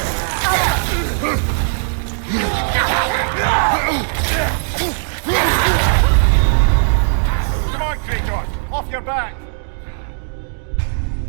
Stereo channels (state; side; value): silent; left; digital silence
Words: Come on, Kratos! Off your back!